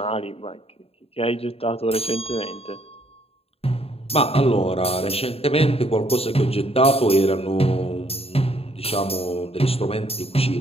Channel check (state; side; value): late; right; 0.28 ms